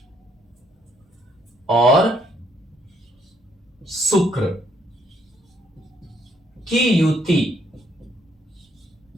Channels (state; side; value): normal; both; correlation 0.70